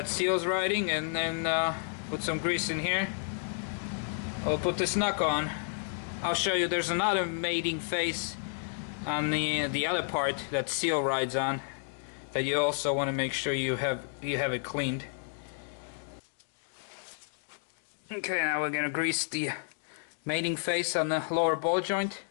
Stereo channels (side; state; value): right; silent; digital silence